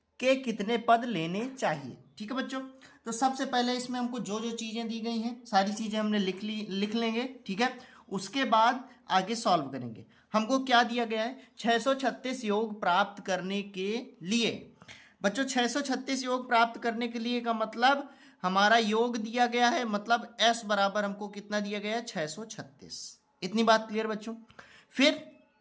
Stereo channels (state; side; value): identical; both; correlation 1.00